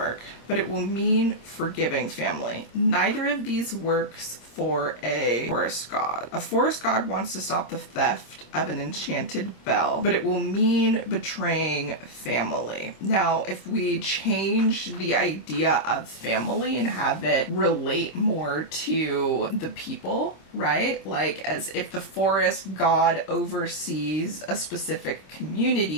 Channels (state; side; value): late; right; 26 ms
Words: But it will mean forgiving family. Neither of these works for a forest god. A forest god wants to stop the theft of an enchanted bell, but it will mean betraying family. Now, if we change the idea of family and have it relate more to the people, right? Like as if the forest god oversees a specific